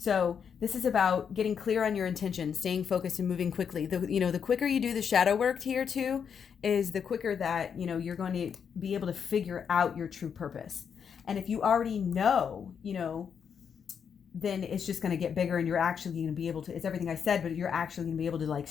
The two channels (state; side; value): quieter; right; 7.2 dB